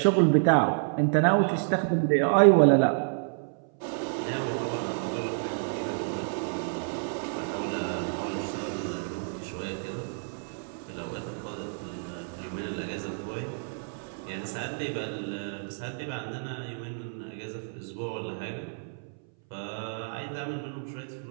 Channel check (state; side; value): silent; left; 58 dB below the other